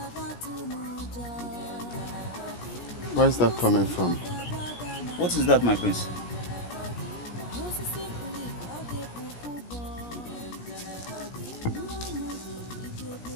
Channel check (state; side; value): late; right; 17 ms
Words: where's that coming from? What is that, my prince?